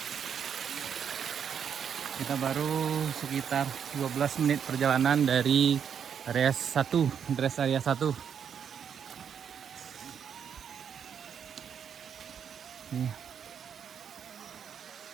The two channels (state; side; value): quieter; left; 7.8 dB